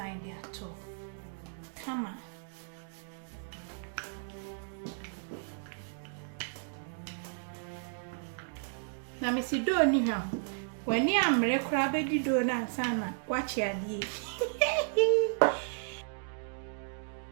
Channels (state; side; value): silent; left; digital silence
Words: the at all come on na me si do ni ha when you am re crowd be di do na sana watch ya die